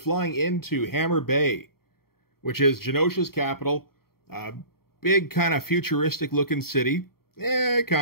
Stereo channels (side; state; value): right; late; 0.94 ms